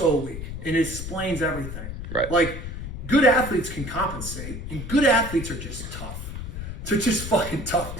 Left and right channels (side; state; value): left; noise; rumble, 7 dB below the sound